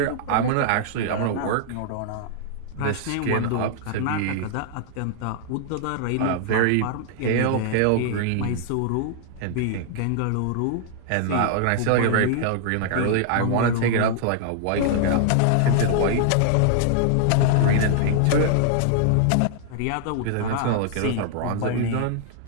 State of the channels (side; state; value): both; different; correlation -0.01